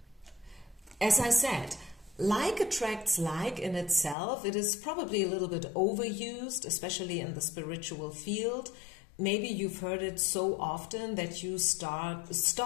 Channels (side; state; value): right; drops out; at 4.2 s